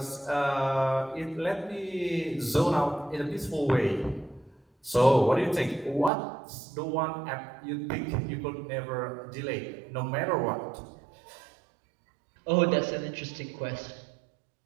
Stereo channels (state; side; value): drops out; left; at 6.1 s